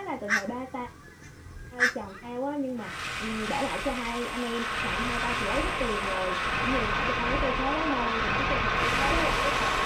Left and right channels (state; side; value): identical; both; correlation 1.00